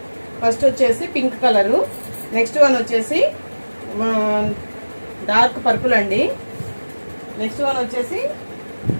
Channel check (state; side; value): inverted; both; correlation -1.00